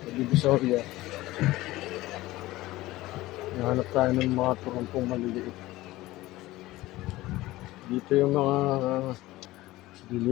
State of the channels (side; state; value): right; quieter; 17.9 dB